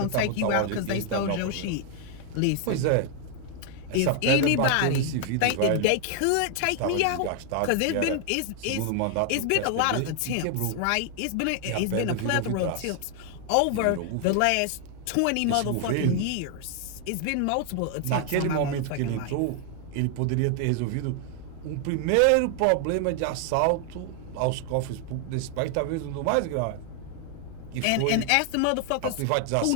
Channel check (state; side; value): different; both; correlation 0.00